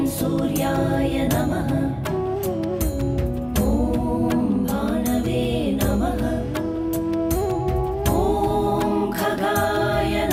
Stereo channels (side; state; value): both; identical; correlation 1.00